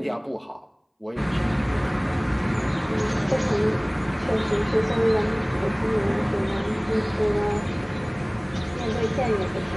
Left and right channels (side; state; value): both; identical; correlation 1.00